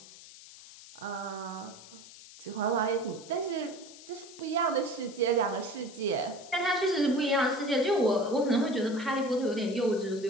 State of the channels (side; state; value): left; noise; hiss, 18 dB below the sound